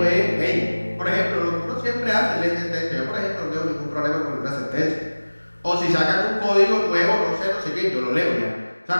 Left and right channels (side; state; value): both; inverted; correlation -1.00